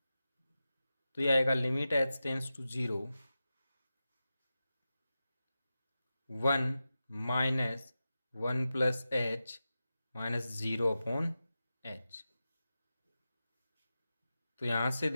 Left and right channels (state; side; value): inverted; both; correlation -0.92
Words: तो ये आएगा limit H tends to 0 1 minus 1 plus H minus 0 upon H. तो यहां से